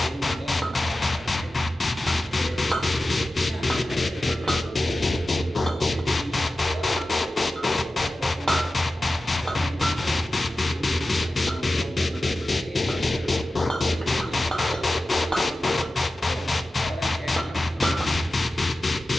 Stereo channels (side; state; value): both; normal; correlation 0.94